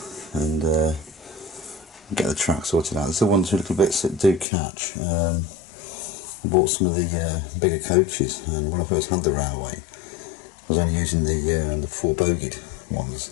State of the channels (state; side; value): drops out; right; at 4.5 s